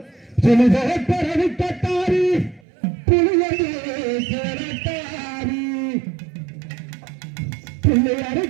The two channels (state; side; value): drops out; left; at 2.6 s